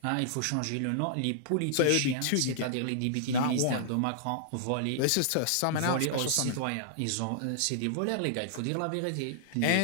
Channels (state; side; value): different; both; correlation -0.01